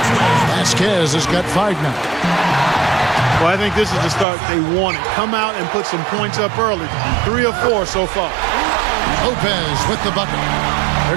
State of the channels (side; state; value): left; drops out; at 4.2 s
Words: Vasquez has got 5 now. Well, I think this is the start they wanted. Come out and put some points up early. 3 or 4 so far. Lopez with the bucket.